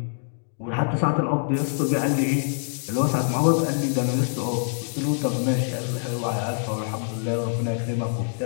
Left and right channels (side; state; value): right; silent; digital silence